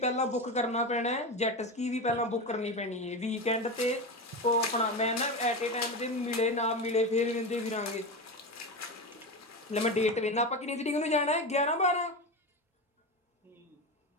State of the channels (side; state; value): both; normal; correlation 0.21